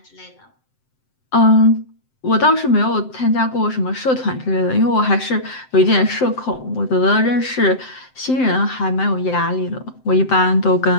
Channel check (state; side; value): late; right; 7.7 ms